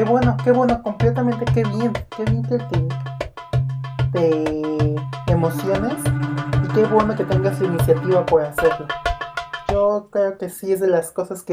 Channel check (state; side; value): identical; both; correlation 1.00